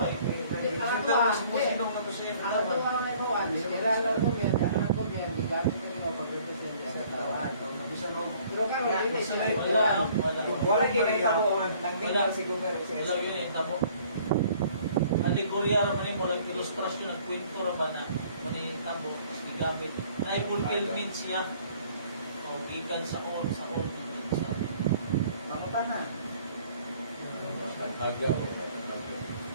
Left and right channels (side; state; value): both; inverted; correlation -0.57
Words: Kita mo si Pusino nga to siya. ang ito ang naibawan, kailangan lang kumyan, kailangan kumyan, di gamit ko nila pag-represent sa tawaan. Pero karon dili siya. Wala. Wala ginahitabo ang nagtinggal si Gomer. Wala yun eh, tabo. Alegorya naman mo, lang ilustrasyon, nagkwento naman na manitabo, gamit. Na-fulfillment siya. O, gikan sa all. Mamutan na. Tanghaga ba tanghaga?